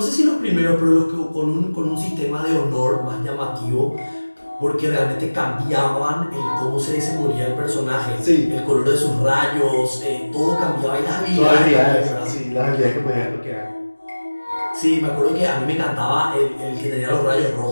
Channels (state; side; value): inverted; both; correlation -1.00